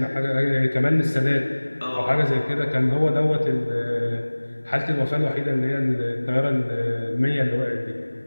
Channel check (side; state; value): both; inverted; correlation -1.00